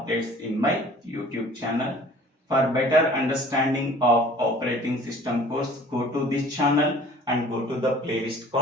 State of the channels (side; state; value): both; normal; correlation 0.50